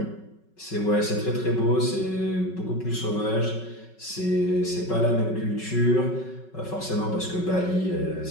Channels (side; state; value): right; late; 5.4 ms